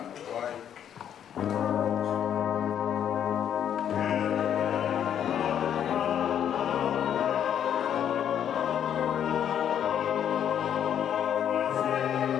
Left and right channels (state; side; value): quieter; right; 9.4 dB